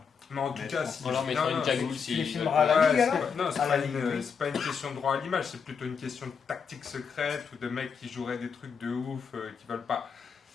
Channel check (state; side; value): quieter; right; 6.3 dB